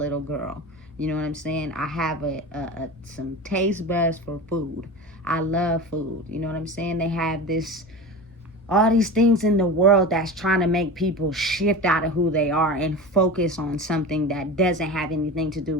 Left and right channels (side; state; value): both; normal; correlation 0.30